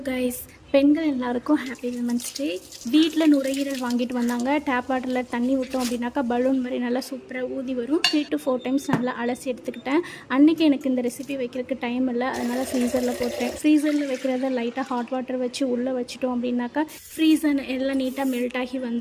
guys, பெண்கள் எல்லாருக்கும் happy women's day. வீட்டில் நுரையீரல் வாங்கிட்டு வந்தாங்க. டேப் வாட்டரில் தண்ணி விட்டோம் அப்படின்னாக்கா பலூன் மாதிரி நல்லா சூப்பராக ஊதி வரும். 3 to 4 டைம்ஸ் நல்லா அலசி எடுத்துக்கிட்டேன். அன்றைக்கி எனக்கு இந்த ரெசிபி வைக்கிறதுக்கு டைம் இல்லை, அதனால் ஃப்ரீசரில் போட்டேன். ஃப்ரீசரில் வைக்கிறத லைட்டாக ஹாட் வாட்டர் வச்சு உள்ளே வச்சுட்டோம் அப்படின்னாக்கா ஃப்ரீசர் எல்லாம் நீட்டாக மெல்ட் ஆகி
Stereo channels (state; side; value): identical; both; correlation 1.00